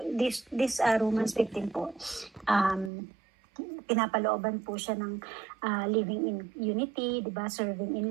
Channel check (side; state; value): left; drops out; at 2.9 s